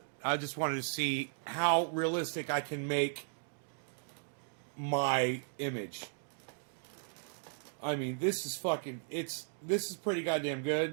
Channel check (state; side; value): silent; left; digital silence